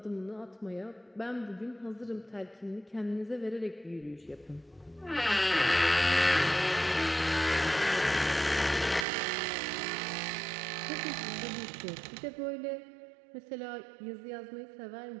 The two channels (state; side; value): drops out; left; at 9.1 s